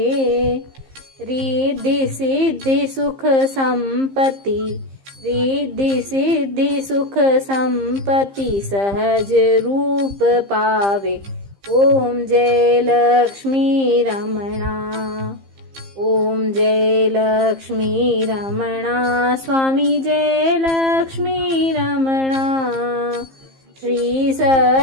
रिद्धि सिद्धि सुख संपत्ति, रिद्धि सिद्धि सुख संपत्ति सहज रूप पावे। ओम जय लक्ष्मी रमणा। ओम जय लक्ष्मी रमणा। स्वामी जय लक्ष्मी रमणा। श्री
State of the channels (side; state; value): left; late; 15 ms